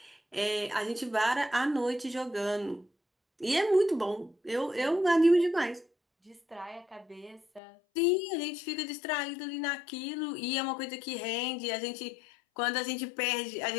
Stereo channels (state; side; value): drops out; right; at 7.6 s